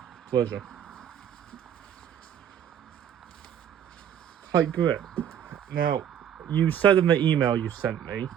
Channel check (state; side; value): quieter; left; 9.5 dB